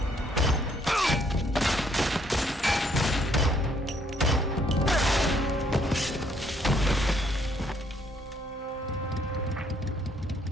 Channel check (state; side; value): normal; both; correlation 0.67